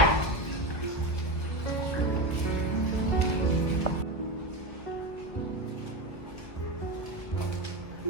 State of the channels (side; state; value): right; late; 1.4 ms